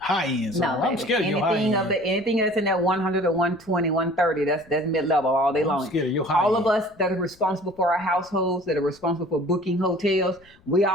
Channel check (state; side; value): noise; left; rumble, 29 dB below the sound